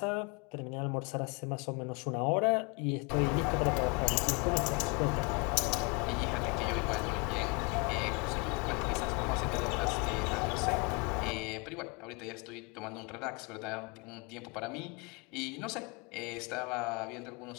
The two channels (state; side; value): quieter; right; 30.8 dB